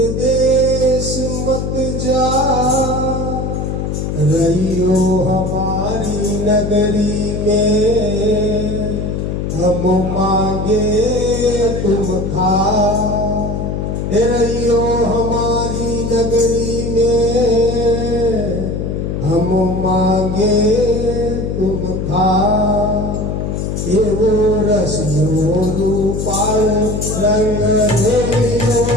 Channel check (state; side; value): noise; left; hum, 3 dB below the sound